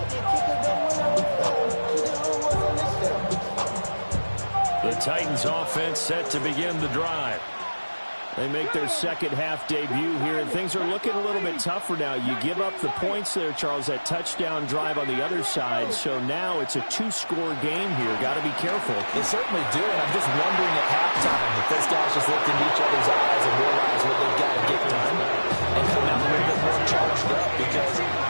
The Titans offense set to begin the drive. They make their 2nd half debut here, and things are looking a little bit tougher now. You give up the points there, Charles, that touchdown drive on the other side. So now it's a 2-score game here. Got to be careful. They certainly do, and I'm just wondering at halftime if those guys just looked in each other's eyes and realized what they've got to get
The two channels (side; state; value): both; inverted; correlation -1.00